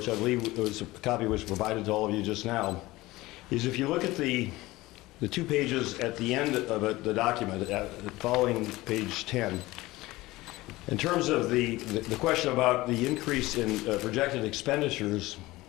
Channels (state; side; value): quieter; right; 19.2 dB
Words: I believe was a copy was provided to all of you just now, is if you look at the 2 pages at the end of the document, following page 10, in terms of the question about the increase in projected expenditures